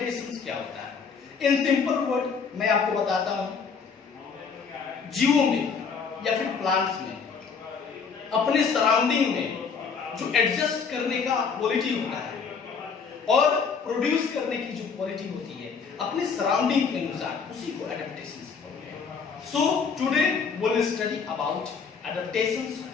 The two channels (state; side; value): quieter; right; 5.8 dB